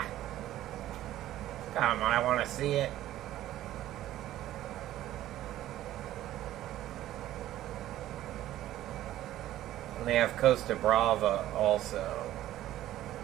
Come on, I want to see it. And they have Costa Brava also.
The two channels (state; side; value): quieter; left; 13.8 dB